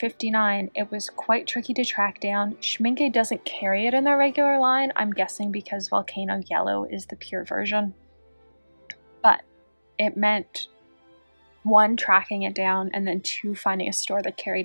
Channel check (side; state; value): both; inverted; correlation -1.00